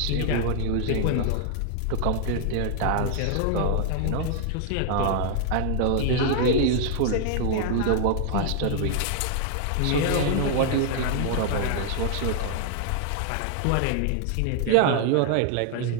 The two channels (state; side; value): different; both; correlation 0.00